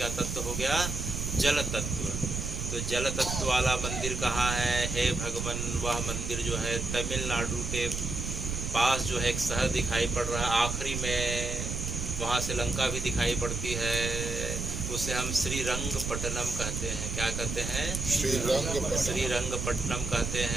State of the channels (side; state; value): right; noise; rumble, 3 dB below the sound